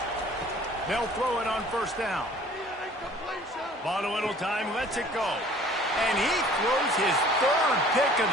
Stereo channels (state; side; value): normal; both; correlation 0.51